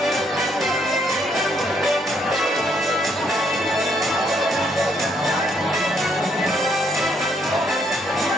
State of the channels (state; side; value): normal; both; correlation 0.71